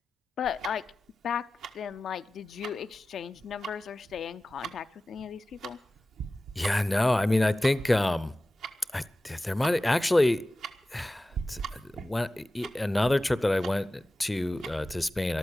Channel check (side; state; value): both; normal; correlation 0.96